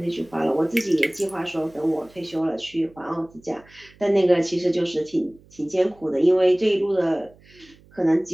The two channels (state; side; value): noise; right; hum, 27 dB below the sound